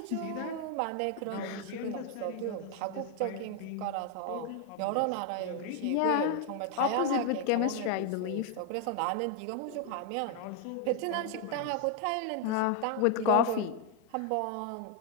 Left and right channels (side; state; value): both; different; correlation 0.01